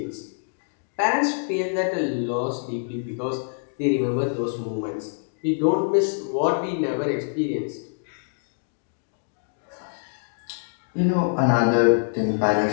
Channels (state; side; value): silent; right; digital silence